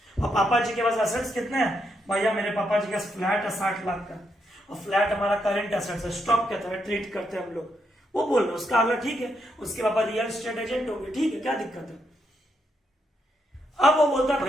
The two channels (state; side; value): normal; both; correlation 0.79